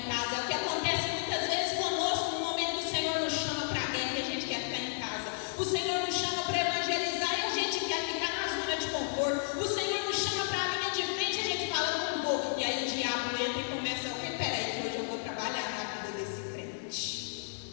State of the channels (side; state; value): right; silent; digital silence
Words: casa. É o que acontece muitas vezes conosco no momento que o Senhor nos chama para a guerra e a gente quer ficar em casa.